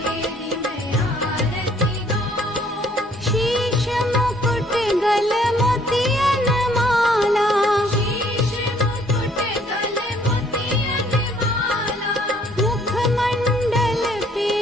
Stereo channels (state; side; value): normal; both; correlation 0.62